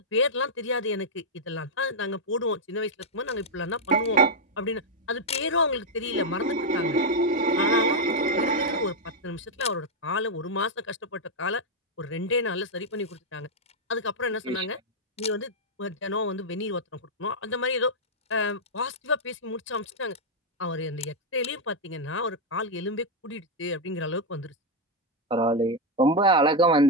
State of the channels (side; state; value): both; normal; correlation 0.00